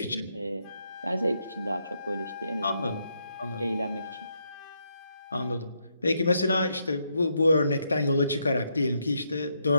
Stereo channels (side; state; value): both; inverted; correlation -0.78